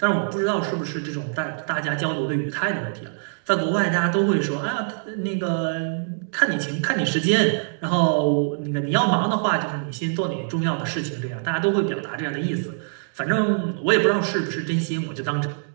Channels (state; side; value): silent; left; digital silence